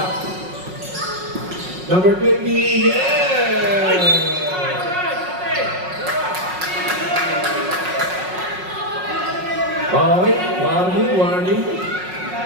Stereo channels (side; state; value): left; late; 5.5 ms